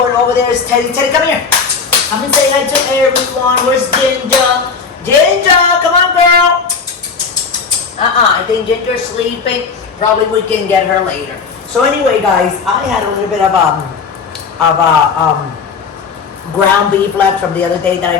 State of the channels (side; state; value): right; quieter; 5.3 dB